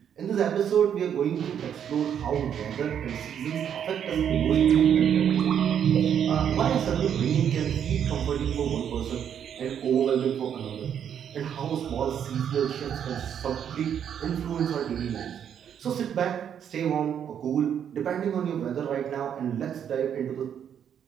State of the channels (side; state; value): left; quieter; 8.7 dB